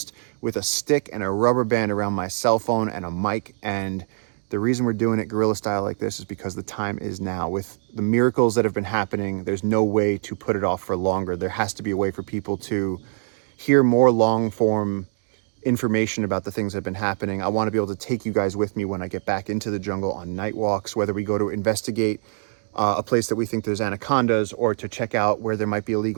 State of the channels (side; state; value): left; silent; digital silence